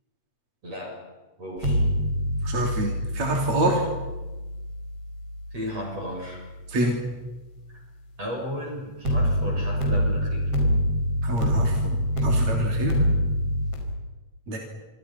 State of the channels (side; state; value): left; late; 8.7 ms